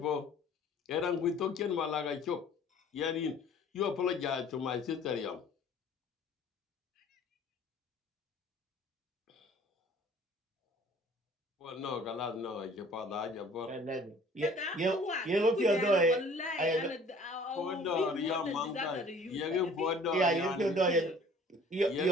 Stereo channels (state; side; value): normal; both; correlation 0.51